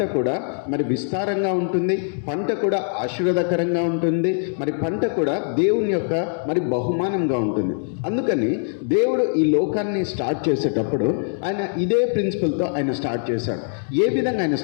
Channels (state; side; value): silent; right; digital silence